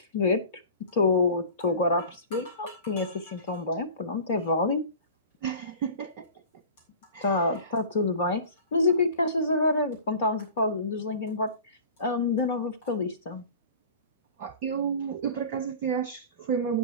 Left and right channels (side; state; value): both; inverted; correlation -0.39